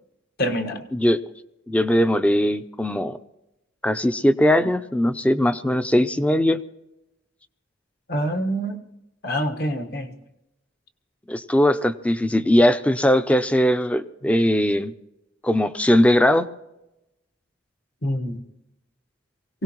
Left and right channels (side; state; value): both; normal; correlation 0.87